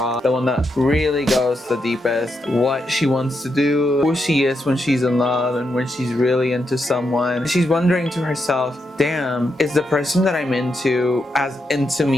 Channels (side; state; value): both; normal; correlation 0.83